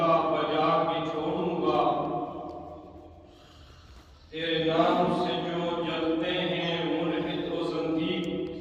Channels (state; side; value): identical; both; correlation 1.00